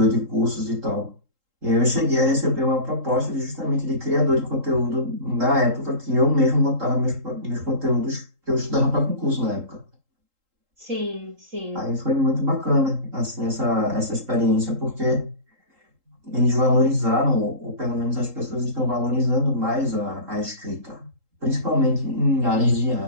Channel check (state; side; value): late; left; 3.8 ms